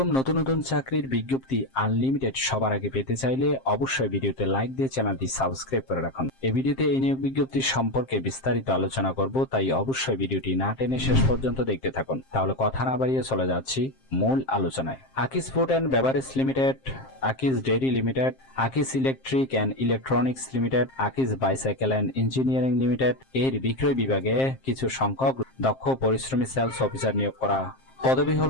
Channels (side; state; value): right; late; 7.6 ms